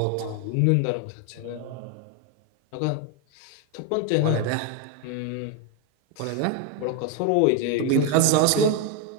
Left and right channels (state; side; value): different; both; correlation 0.02